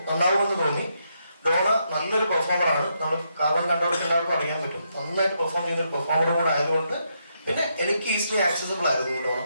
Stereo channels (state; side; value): inverted; both; correlation -0.79